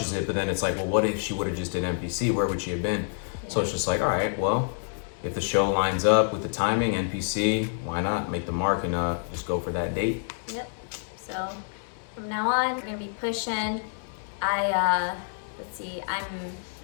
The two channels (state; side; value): silent; right; digital silence